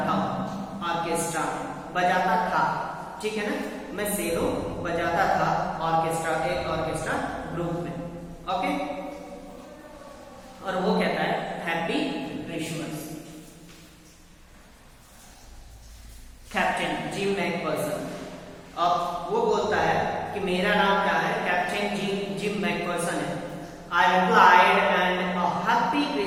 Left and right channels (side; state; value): both; identical; correlation 1.00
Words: हूँ, ऑर्केस्ट्रा बजाता था, ठीक है ना, मैं सेलो बजाता था ऑर्केस्ट्रा, एक ऑर्केस्ट्रा ग्रुप में, ओके। और वो कहता है happy Christmas. Captain gym Macpherson, अब वो बोलता है कि मेरा नाम क्या है, कैप्टन जिम मैकफर्सन है। I replied, and a happy